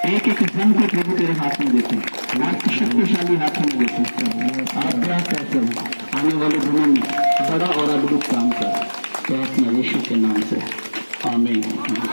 एक एक जन को प्रभु तेरे हाथ में देते हैं, आपकी शक्तिशाली हाथ में देते हैं। आप क्या कहते हो आने वाले दिनों में बड़ा और अद्भुत काम कर, तो अपने यीशु के नाम से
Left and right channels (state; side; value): inverted; both; correlation -1.00